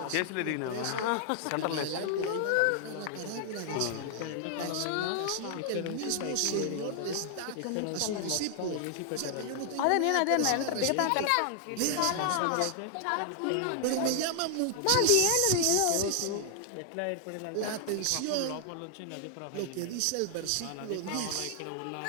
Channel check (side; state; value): both; different; correlation 0.00